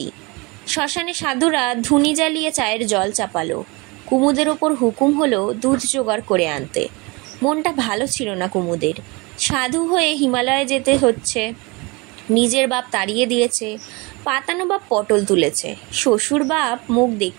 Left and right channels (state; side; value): quieter; left; 26.6 dB